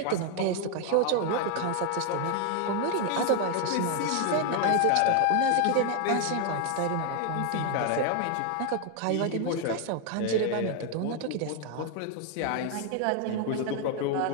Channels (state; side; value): different; both; correlation 0.01